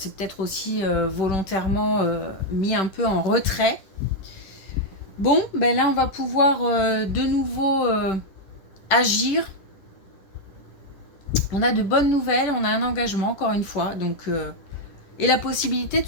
peut-être aussi volontairement mis un peu en retrait. Bon, ben là on va pouvoir de nouveau agir. On a de bonnes nouvelles, on a un engagement encore une fois, donc et la possibilité de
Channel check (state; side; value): late; right; 10 ms